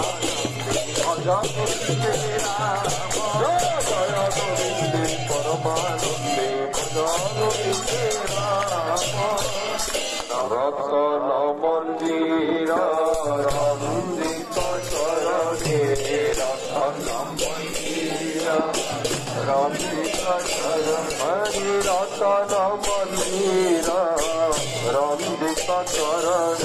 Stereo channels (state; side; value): identical; both; correlation 1.00